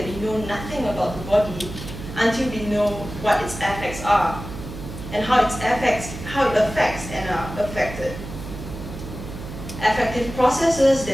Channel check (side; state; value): right; noise; hum, 10 dB below the sound